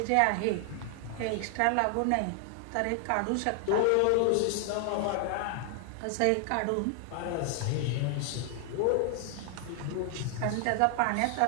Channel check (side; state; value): both; different; correlation 0.00